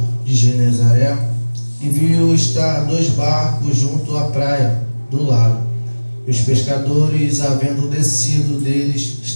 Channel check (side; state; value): both; inverted; correlation -1.00